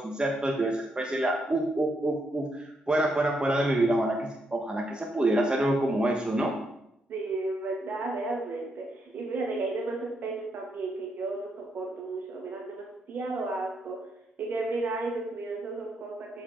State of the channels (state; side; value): normal; both; correlation 0.79